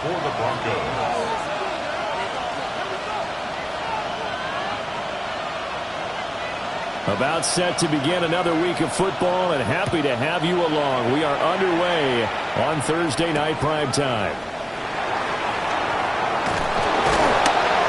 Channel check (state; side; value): identical; both; correlation 1.00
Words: the Broncos. About set to begin another week of football, and happy to have you along. We are underway on Thursday night primetime.